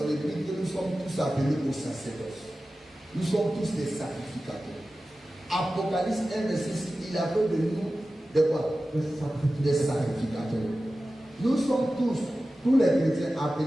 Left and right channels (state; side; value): normal; both; correlation 0.95